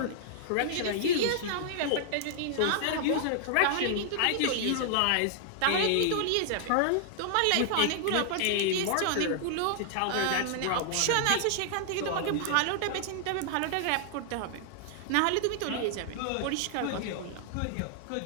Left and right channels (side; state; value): both; different; correlation -0.01